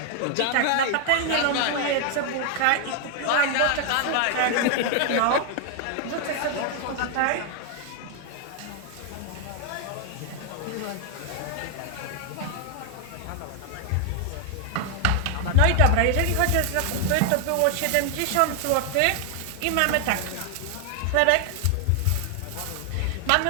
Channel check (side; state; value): both; different; correlation 0.00